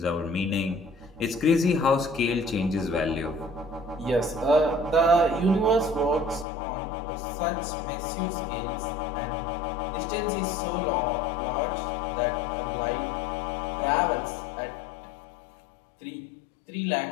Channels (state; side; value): drops out; right; at 6.5 s